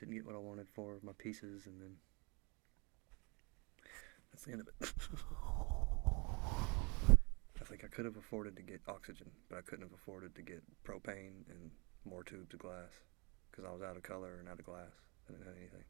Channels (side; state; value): left; quieter; 30.4 dB